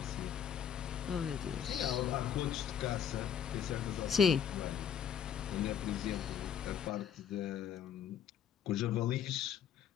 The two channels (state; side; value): quieter; right; 8.6 dB